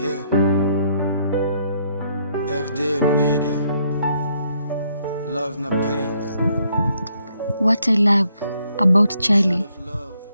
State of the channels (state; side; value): inverted; both; correlation -0.71